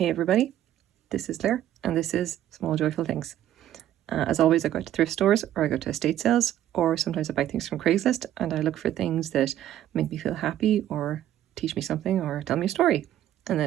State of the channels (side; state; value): left; quieter; 12.1 dB